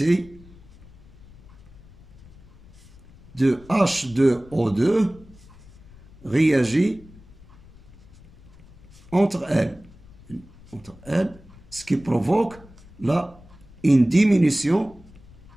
de H2O2 réagit entre elles, ce qui provoque une diminution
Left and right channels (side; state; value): left; noise; rumble, 22 dB below the sound